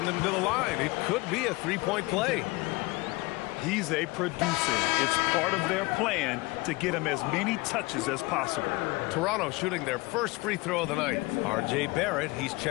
him to the line. It could be a 3-point play. He's a producer. It's part of their plan to get him as many touches as possible. Toronto shooting their first free throw of the night. R.J. Barrett, he's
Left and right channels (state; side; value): quieter; right; 23.1 dB